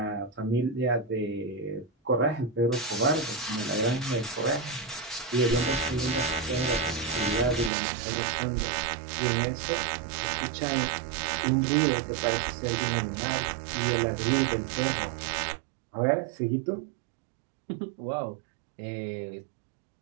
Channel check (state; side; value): drops out; left; at 7.7 s